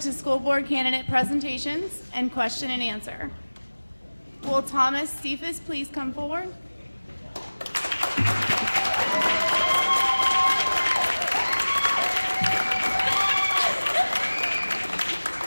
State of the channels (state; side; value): inverted; both; correlation -1.00